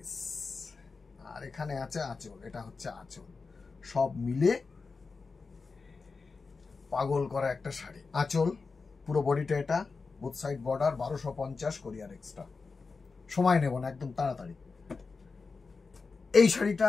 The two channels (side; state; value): right; quieter; 4.4 dB